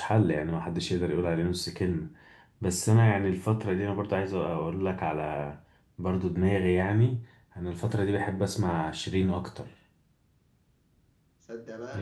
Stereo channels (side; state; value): both; identical; correlation 1.00